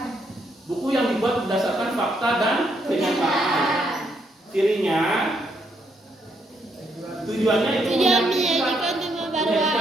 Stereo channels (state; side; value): normal; both; correlation 0.75